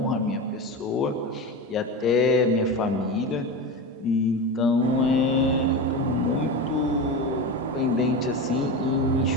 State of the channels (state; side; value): normal; both; correlation 0.22